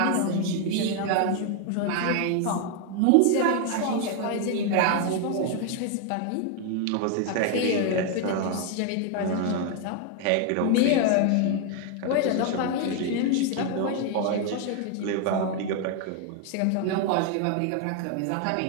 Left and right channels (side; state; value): both; different; correlation 0.01